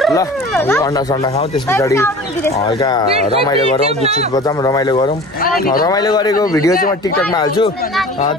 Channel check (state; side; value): normal; both; correlation 0.40